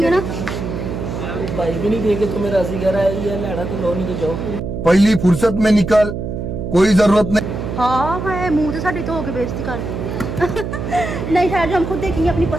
है ना। भाई भी नहीं देखे तो मेरा राजी कह रहा है, ये लड़ा तो लो नहीं तो जाओ। पहली फुर्सत में निकल, कोई जरूरत नहीं। हाँ है, मुंह तो साड़ी तो होके बेइज्जती कर दी। नहीं खैर, जो हम खुद देखेंगे, अपनी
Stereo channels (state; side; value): noise; right; hum, 5 dB below the sound